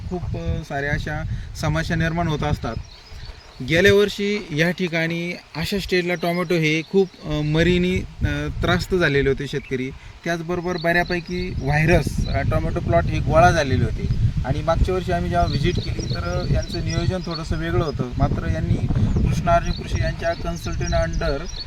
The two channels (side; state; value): both; identical; correlation 1.00